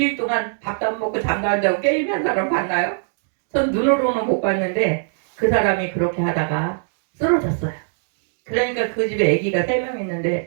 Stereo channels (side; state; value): left; silent; digital silence